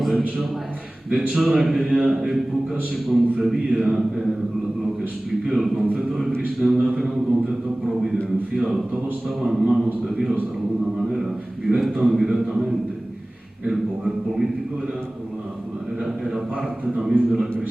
de hecho en aquella época se concebía lo que expliqué, el concepto de cristiandad era un concepto providencial, todo estaba en manos de Dios de alguna manera, directa o indirectamente. El poder político era parte también de la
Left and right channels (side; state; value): both; normal; correlation 0.98